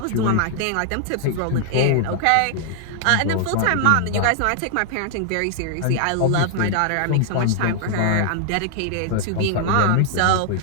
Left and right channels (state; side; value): different; both; correlation 0.00